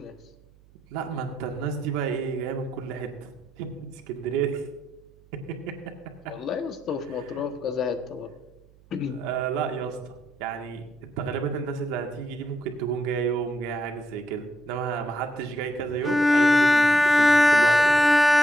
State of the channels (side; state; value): right; noise; hum, 28 dB below the sound